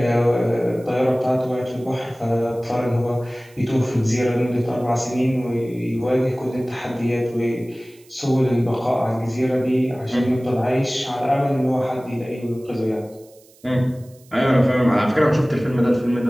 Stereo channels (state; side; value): noise; right; hiss, 28 dB below the sound